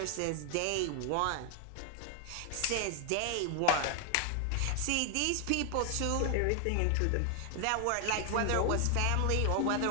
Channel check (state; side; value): different; both; correlation 0.00